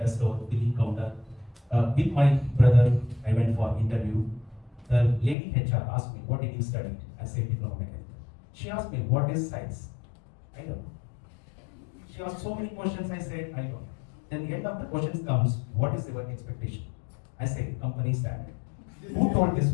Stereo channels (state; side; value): drops out; right; at 5.4 s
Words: store, billing counter. With my brother, I went for interview. The lady HR asked me, what did you study? I said, diploma mechanical. She asked me, what is science? I don't know. She asked so many questions, I said, I don't know. Then the end of the questions comes, what is your expectation? I said, company standard. Who told this